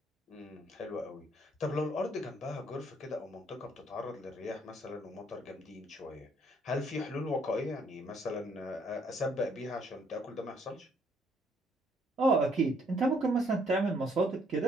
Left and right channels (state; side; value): normal; both; correlation 0.67